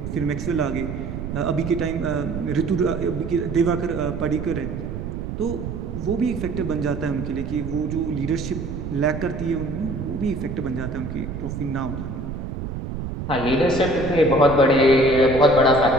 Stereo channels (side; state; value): right; noise; rumble, 6 dB below the sound